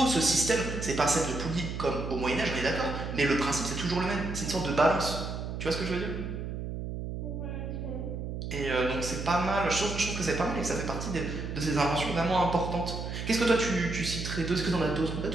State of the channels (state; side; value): noise; right; hum, 5 dB below the sound